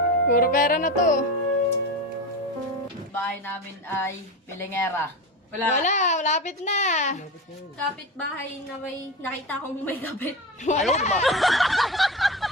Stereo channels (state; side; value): normal; both; correlation 0.23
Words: Puro pera na to. Bahay namin ay pilingera. Wala. Lapit na. Kapitbahay na may nakita kong may kapit. Wala.